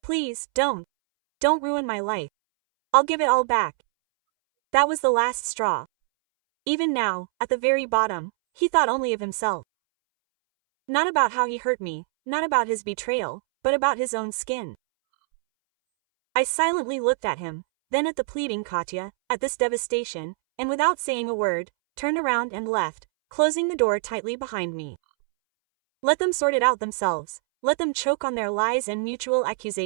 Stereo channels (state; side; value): silent; left; 62 dB below the other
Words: Please, don't. Don't ruin my life. I'll give it all back. That was the last straw. Even now, at the very bottom, he thought only of himself. Not about how he hurt me, not about his betrayal, but about his own skin. I silently looked at him, then at the pleading Katya, at this devastation, and without saying a word, turned around and left, closing the door tightly behind me. Let them sort it out themselves, let them choke on their lies and mutual